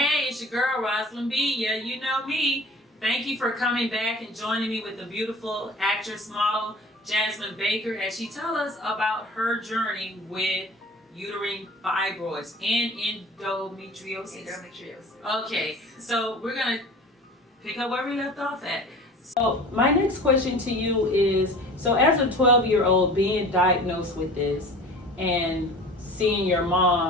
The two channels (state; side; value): normal; both; correlation 0.42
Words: it's your girl, Roslyn B. Yeah, you know me. Thank you for coming back and joining me with the beautiful actress model, Jazzmon Baker, as she tells us about her journey with uterine fibroids and endometriosis. Okay, so we're going to pick up where we left off at. So my next question to you is, so as a 12-year-old being diagnosed with this and seeing your